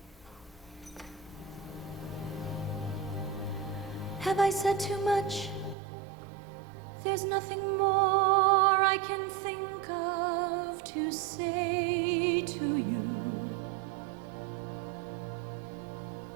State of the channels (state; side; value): drops out; left; at 5.8 s